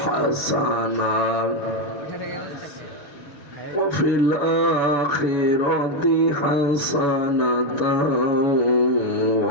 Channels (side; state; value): right; late; 7.1 ms